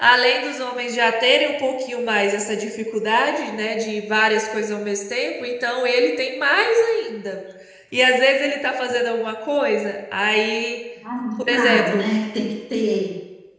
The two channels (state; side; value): identical; both; correlation 1.00